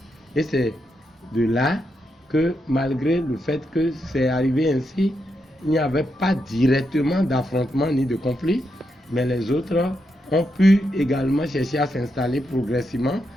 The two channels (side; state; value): both; normal; correlation 0.83